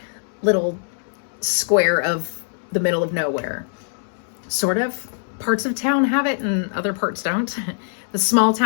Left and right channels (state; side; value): silent; right; 64 dB below the other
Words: little square of the middle of nowhere. Sort of. Parts of town have it and other parts don't. The small